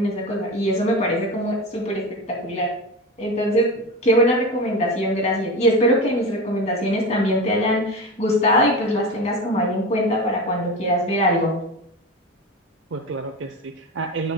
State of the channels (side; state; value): both; normal; correlation 0.25